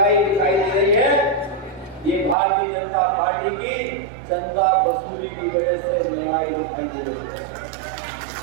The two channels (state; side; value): drops out; left; at 2.4 s